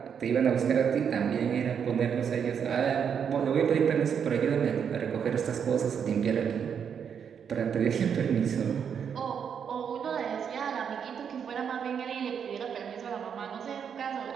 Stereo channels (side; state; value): left; quieter; 7.5 dB